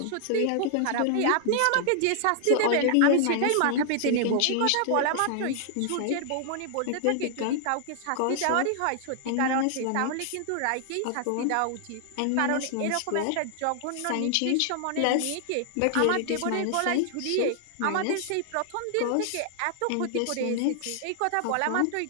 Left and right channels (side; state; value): both; different; correlation 0.00